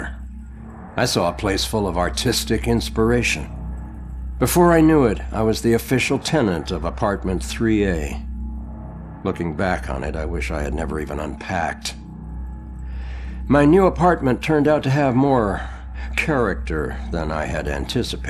I saw a place full of artistic inspiration. Before I knew it, I was the official tenant of apartment 3A. Looking back on it, I wish I had never even unpacked. My new apartment turned out to have more character than I had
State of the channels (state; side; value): identical; both; correlation 1.00